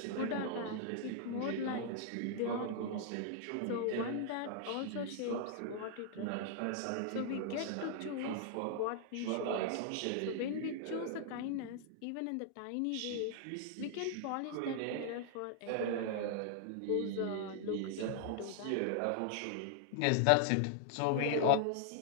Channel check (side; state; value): both; different; correlation -0.01